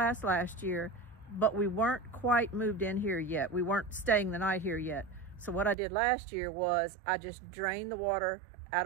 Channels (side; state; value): left; drops out; at 5.8 s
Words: last year, but we weren't quite moved in here yet. We weren't staying the night here yet. So what I did last year was I just drained the water